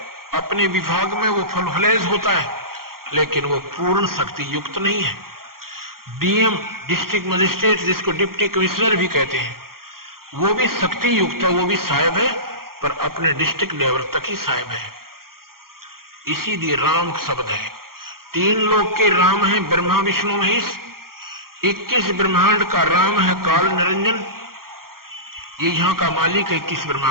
अपने विभाग में वो फुलफलेज होता है, लेकिन वो पूर्ण शक्ति युक्त नहीं है। डीएम, डिस्ट्रिक्ट मजिस्ट्रेट, जिसको डिप्टी कमिश्नर भी कहते हैं, वो भी शक्ति युक्त है, वो भी साहेब है, पर अपने डिस्ट्रिक्ट लेवल तक ही साहेब है। इसीलिए राम शब्द है। 3 लोक के राम हैं, ब्रह्मा विष्णु महेश। 21 ब्रह्मांड का राम है काल निरंजन, ये यहां का मालिक है 21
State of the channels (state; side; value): late; left; 0.92 ms